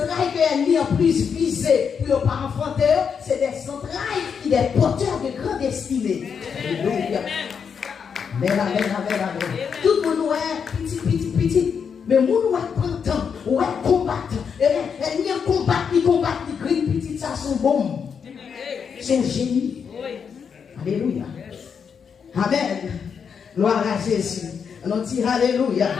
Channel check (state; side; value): quieter; right; 6.7 dB